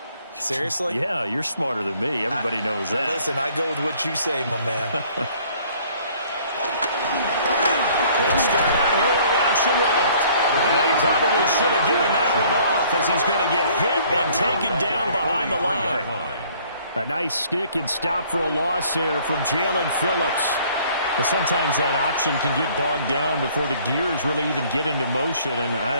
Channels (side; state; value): both; inverted; correlation -0.58